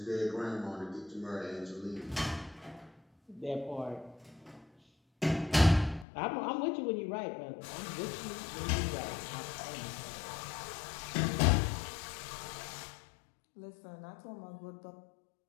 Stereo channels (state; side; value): drops out; right; at 6.1 s